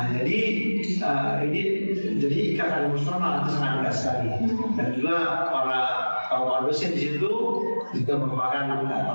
jadi ini jadi ikatan emosional itu sangat dekat sekali, dan juga para dosen di situ juga merupakan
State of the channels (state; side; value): inverted; both; correlation -1.00